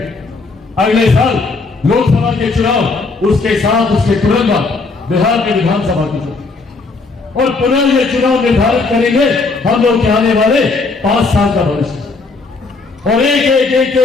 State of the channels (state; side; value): quieter; right; 3.9 dB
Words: अगले साल लोकसभा के चुनाव, उसके साथ उसके तुरंत बाद बिहार के विधानसभा के चुनाव, और पुनः ये चुनाव निर्धारित करेंगे हम लोग के आने वाले 5 साल का भविष्य। और एक एक एक